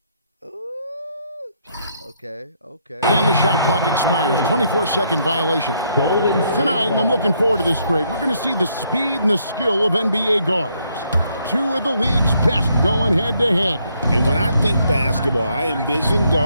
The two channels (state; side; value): inverted; both; correlation -0.72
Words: Ooh. Okay. And the shot clock expires. 24-second violation. Tonight, and I'm looking forward to this, Greg, we're going to see the speed and the skill of NBA guards. Two of the league's best going head-to-head. And when I think basketball, I envision